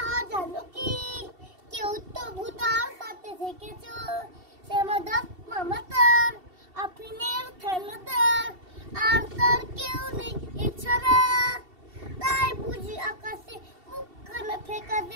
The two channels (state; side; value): late; left; 2.7 ms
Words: জানো কি? কেউ তো ভূতার সাথে দেখেছো। শ্যামাদাস মামা তার, আফিনের ঠেলাদার, আর তার কেউ নেই এছাড়া। তাই বুঝি আকাশে মুখখানা